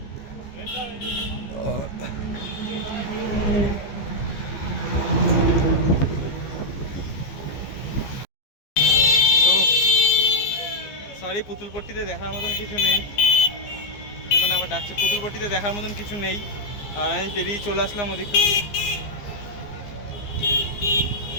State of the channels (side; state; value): right; late; 15 ms